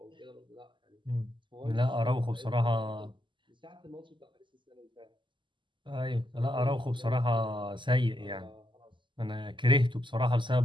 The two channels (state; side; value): late; left; 0.24 ms